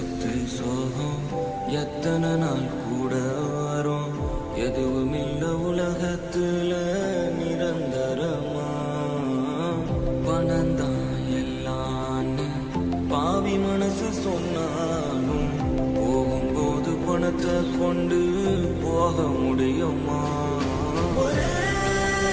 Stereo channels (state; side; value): identical; both; correlation 1.00